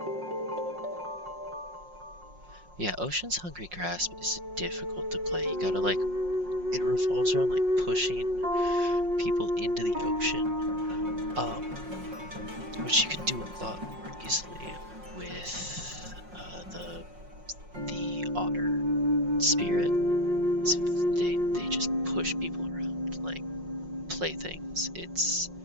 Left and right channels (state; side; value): late; left; 5.5 ms